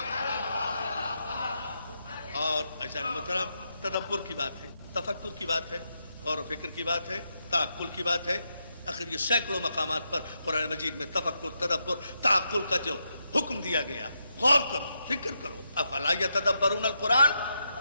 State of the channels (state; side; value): inverted; both; correlation -0.82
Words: اور ایسا محترم تدبر کی بات ہے، تفکر کی بات ہے، غور و فکر کی بات ہے، تعقل کی بات ہے. آخر یہ سینکڑوں مقامات پر قرآن مجید میں تفکر، تدبر، تعقل کا جو حکم دیا گیا، غور کرو، فکر کرو. افلا یتدبرون القرآن